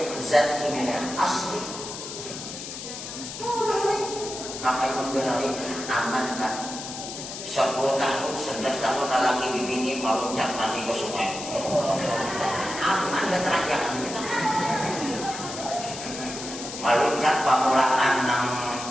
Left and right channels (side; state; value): left; noise; hiss, 9 dB below the sound